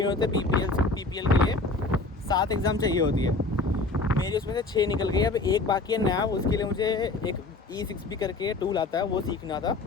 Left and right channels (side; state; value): right; quieter; 3.3 dB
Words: होते पीपीएल के लिए 7 एग्ज़ाम चाहिए होती है मेरी, उसमें से 6 निकल गई। अब एक बाकी है नया, उसके लिए मुझे एक E6P करके टूल आता है वो सीखना था,